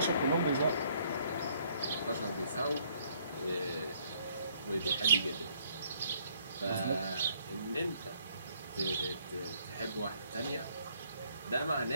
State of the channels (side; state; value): both; inverted; correlation -0.65